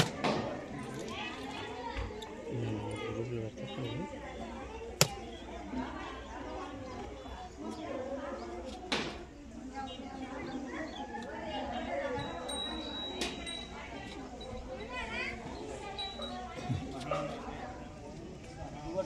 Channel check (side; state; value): both; identical; correlation 1.00